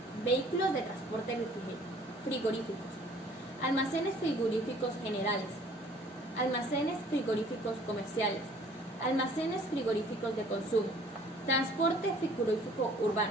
Vehículos de transporte frigoríficos. Almacenes frigoríficos generales. Almacenes frigoríficos comerciales. Almacenes frigoríficos de consumo. Transporte frigorífico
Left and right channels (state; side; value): normal; both; correlation 0.54